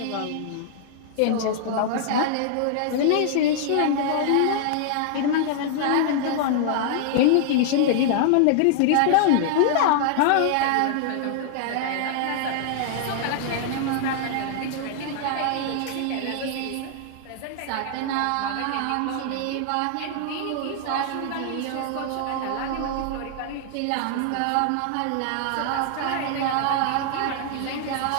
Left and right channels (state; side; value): different; both; correlation -0.01